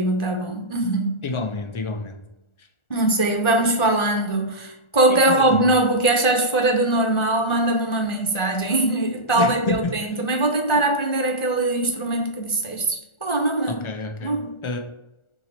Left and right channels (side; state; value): right; late; 1.4 ms